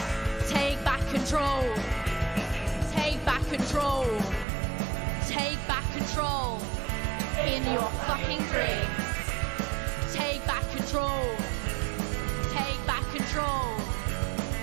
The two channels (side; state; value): left; drops out; at 4.5 s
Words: control. Take back control. Take back control in your fucking dreams. Take back control. Take back control.